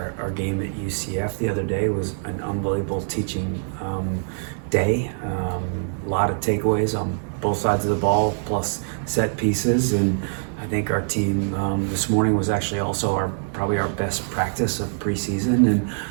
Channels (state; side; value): silent; left; digital silence